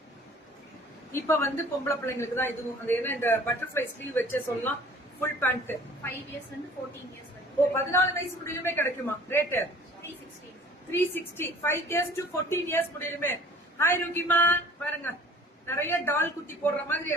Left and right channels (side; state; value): both; normal; correlation 0.50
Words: இப்ப வந்து பொம்பளை பிள்ளைங்களுக்கு தான் இதுவும். அது என்ன இந்த பட்டர்ஃபிளை ஸ்லீவ் வச்சே சொல்லலாம். Full pant 5 years and 14 years வரைக்கும். ஓ 14 வயசு முடியுமே கிடைக்குமா? ரேட் 360. 360. 5 years to 14 years முடியுமே. ஹாய் ருகிமா பாருங்க, நிறைய டால் குட்டி போடுற மாதிரி